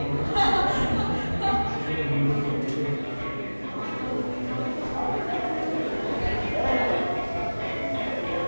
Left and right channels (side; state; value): both; inverted; correlation -1.00